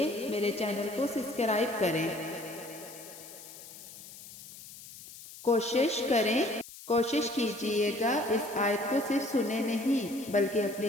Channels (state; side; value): noise; left; hiss, 16 dB below the sound